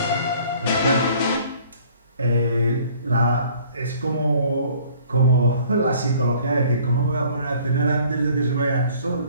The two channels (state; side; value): inverted; both; correlation -0.55